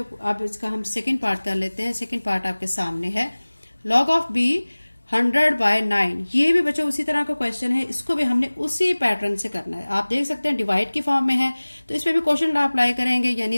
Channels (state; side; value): inverted; both; correlation -1.00